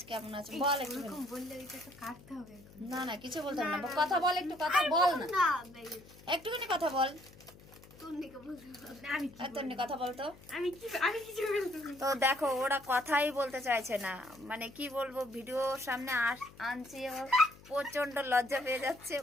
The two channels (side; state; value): left; noise; hum, 22 dB below the sound